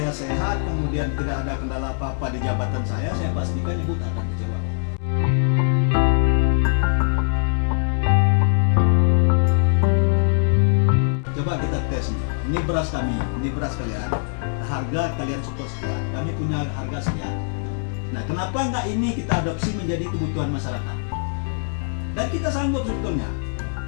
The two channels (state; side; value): silent; right; digital silence